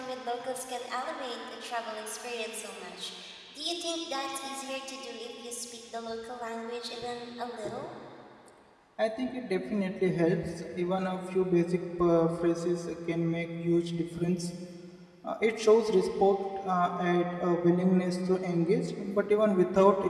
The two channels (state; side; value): identical; both; correlation 1.00